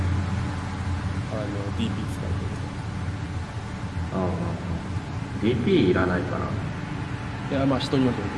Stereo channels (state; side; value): identical; both; correlation 1.00